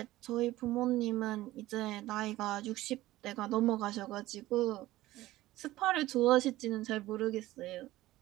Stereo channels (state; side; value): quieter; left; 16.6 dB